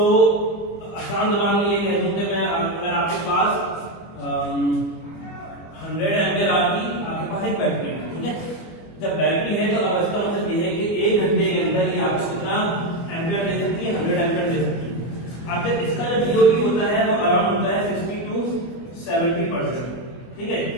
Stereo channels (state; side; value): late; right; 25 ms